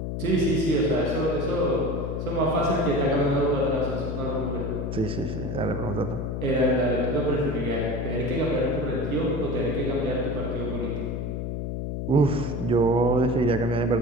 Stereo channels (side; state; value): left; noise; hum, 3 dB below the sound